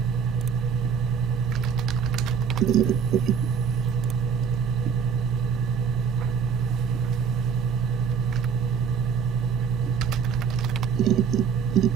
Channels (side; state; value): left; quieter; 6.7 dB